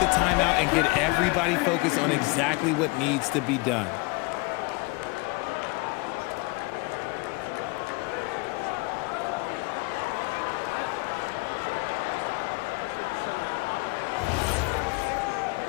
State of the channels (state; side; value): quieter; right; 26.6 dB